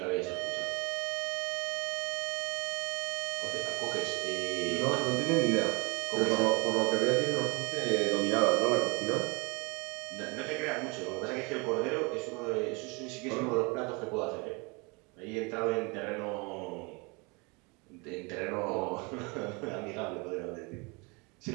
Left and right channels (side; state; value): left; quieter; 29.1 dB